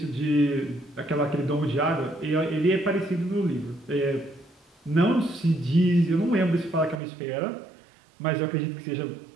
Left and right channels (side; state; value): left; drops out; at 7.0 s